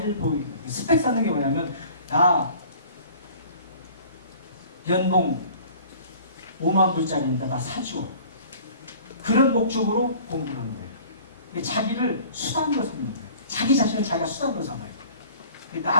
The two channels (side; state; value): both; inverted; correlation -0.47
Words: 보이게. 스펙 쌓는 게 뭐냐면 나 연봉 5만 불짜리니까 나 사줘. 그런 목적으로 공부를 하는 거예요. 자기를 수단으로 삼는 거예요. 자기 자신을 자기가 수단으로 삼아요.